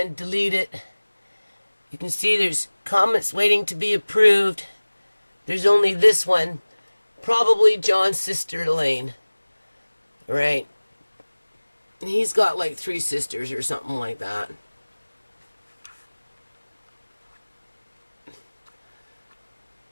delete it. You can see there's comments waiting to be approved. There's only this one. Probably John's sister Elaine. Right. And he's got like 3 sisters or something like that.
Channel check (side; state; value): both; inverted; correlation -1.00